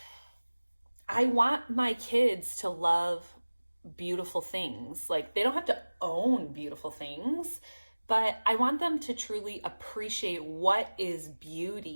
I want my kids to love beautiful things. Like, they don't have to own beautiful things, but I want them to truly appreciate what is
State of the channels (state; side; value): inverted; both; correlation -1.00